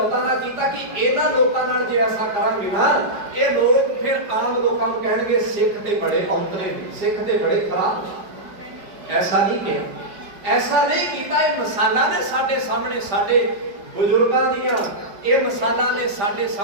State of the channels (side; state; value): left; late; 5.0 ms